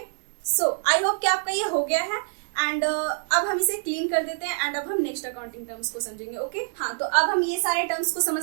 सो आई होप कि आपका ये हो गया है एंड अब हम इसे क्लीन कर देते हैं एंड अब हम नेक्स्ट अकाउंटिंग टर्म्स को समझेंगे। ओके, हाँ, तो अब हम ये सारे टर्म्स को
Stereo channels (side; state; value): left; silent; digital silence